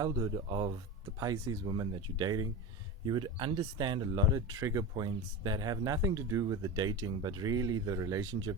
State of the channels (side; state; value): both; normal; correlation 0.23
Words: of the Pisces woman that you're dating, you would understand a lot of trigger points that have nothing to do with the dating, but really the